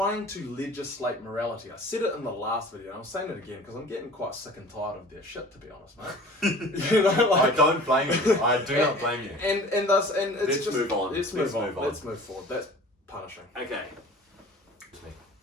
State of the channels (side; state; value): both; normal; correlation 0.44